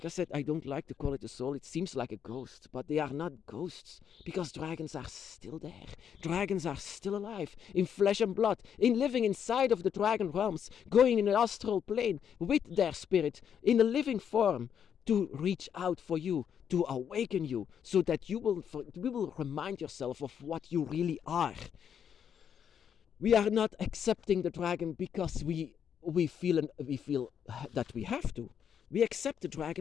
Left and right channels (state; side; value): quieter; right; 8.2 dB